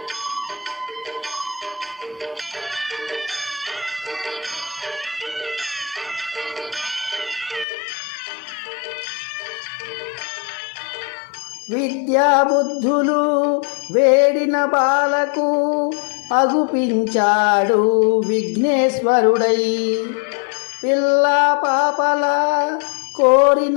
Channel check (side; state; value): right; drops out; at 7.7 s